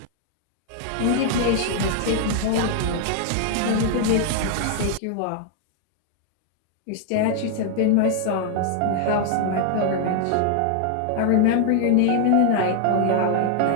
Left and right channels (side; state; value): both; different; correlation 0.00